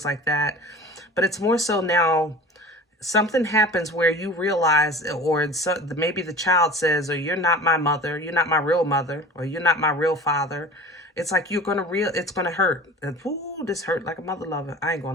like that. But it's more so now something happens where you realize, or maybe the child says, or you're not my mother, you're not my real mother, or you're not my real father. It's like it's gonna hurt. And, ooh, this hurt like a mother lover. I ain't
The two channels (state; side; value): normal; both; correlation 0.39